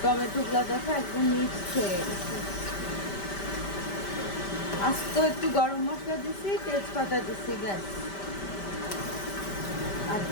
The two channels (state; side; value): late; right; 5.1 ms